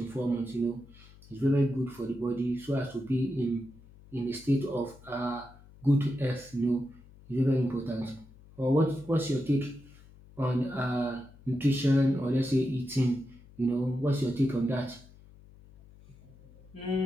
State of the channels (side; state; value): left; noise; hum, 23 dB below the sound